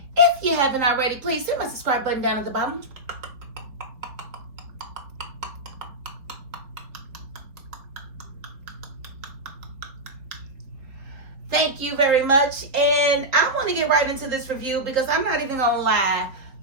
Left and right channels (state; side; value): late; left; 3.6 ms